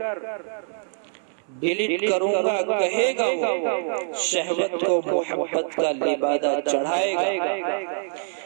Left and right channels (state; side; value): silent; left; 62 dB below the other